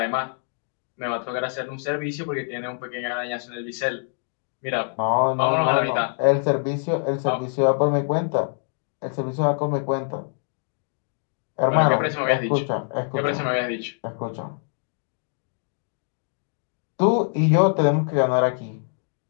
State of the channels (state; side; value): silent; right; 62 dB below the other